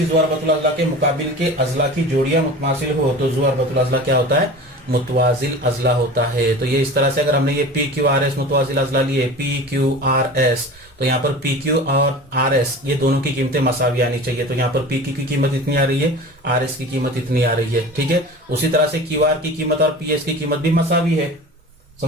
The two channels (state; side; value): normal; both; correlation 0.36